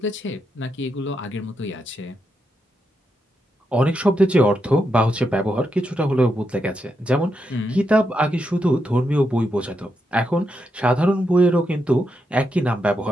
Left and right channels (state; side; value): normal; both; correlation 0.83